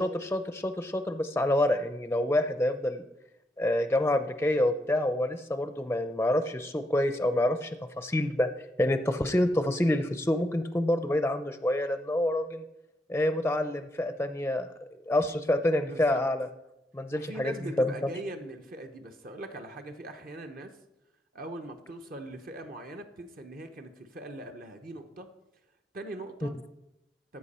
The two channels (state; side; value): normal; both; correlation 0.79